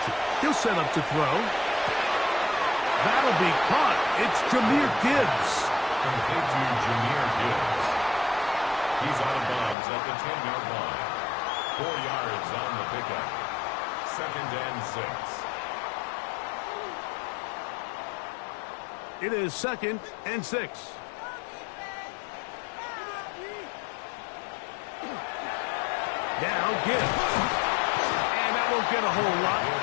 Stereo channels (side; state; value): right; drops out; at 9.8 s